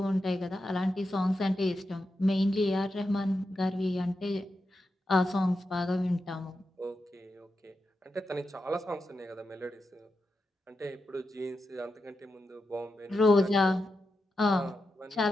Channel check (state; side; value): normal; both; correlation 0.88